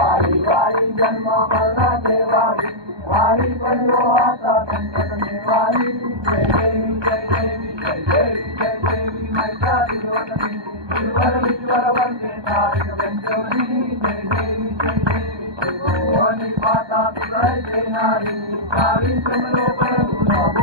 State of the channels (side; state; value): left; late; 1.2 ms